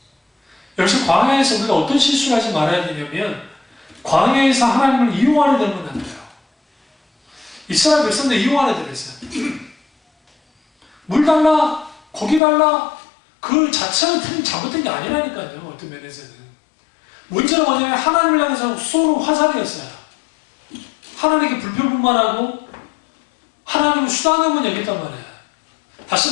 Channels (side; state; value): right; drops out; at 12.4 s